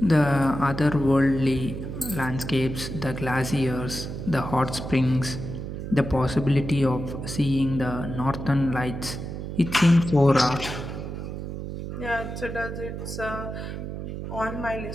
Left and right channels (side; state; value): right; noise; hum, 7 dB below the sound